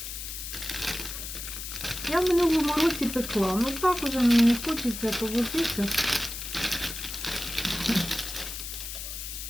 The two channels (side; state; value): left; noise; hiss, 7 dB below the sound